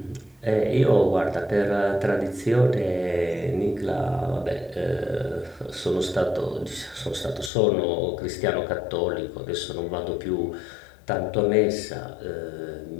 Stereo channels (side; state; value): right; drops out; at 7.5 s